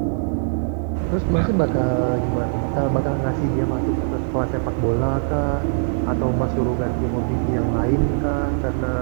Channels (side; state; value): left; silent; digital silence